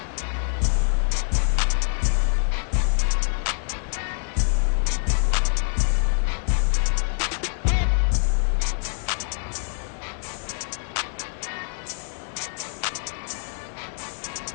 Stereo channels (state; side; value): silent; right; 62 dB below the other